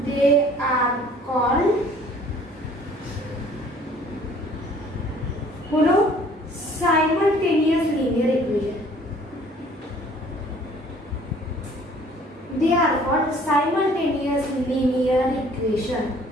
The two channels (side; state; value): both; normal; correlation 0.55